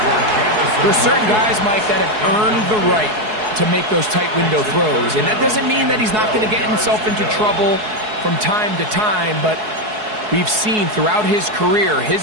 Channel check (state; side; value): late; left; 4.7 ms